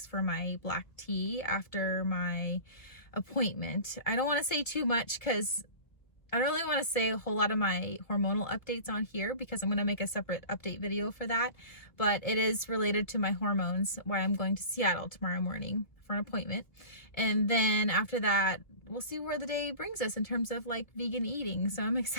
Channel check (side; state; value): right; late; 1.4 ms